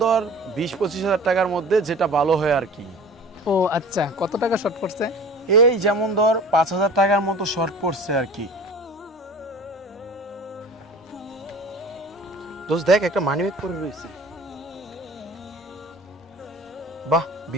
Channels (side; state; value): both; normal; correlation 0.41